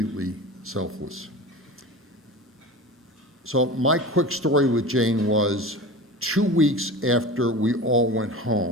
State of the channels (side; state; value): both; normal; correlation 0.33